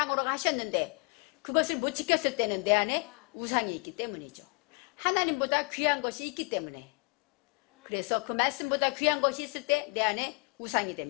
하셨는데 그것을 못 지켰을 때는 내 안에 우상이 있기 때문이죠. 하나님보다 귀한 것이 있기 때문에 그래서 그 말씀보다 귀한 것이 있을 때 내 안에 우상이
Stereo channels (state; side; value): quieter; right; 32.6 dB